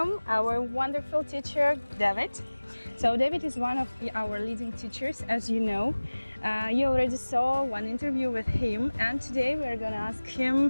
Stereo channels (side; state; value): both; inverted; correlation -1.00